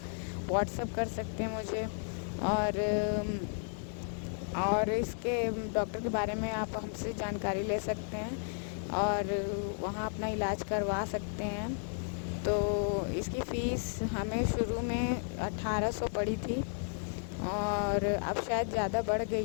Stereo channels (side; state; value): right; silent; digital silence